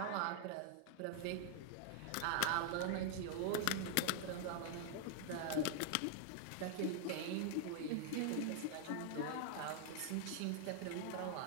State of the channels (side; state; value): both; different; correlation 0.00